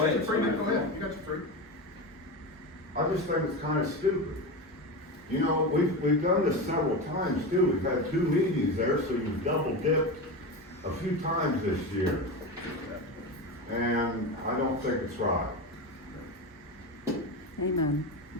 ahead. You're free, man, go ahead, you got your free. I just think it's kind of stupid. You know, we've done this several times too. We've had 2 meetings there, so you've double dipped a few times this year. And I don't think it's right. Amen.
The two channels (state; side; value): normal; both; correlation 0.21